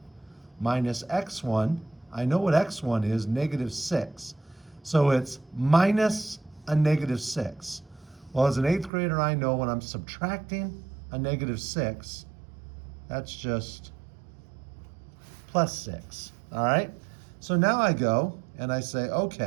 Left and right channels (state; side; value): drops out; left; at 8.9 s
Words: minus x1. I know what x1 is, -6. So it's minus a -6. Well, as an 8th grader, I know when I'm subtracting a -6, that's just +6, all right? So now I go and I say,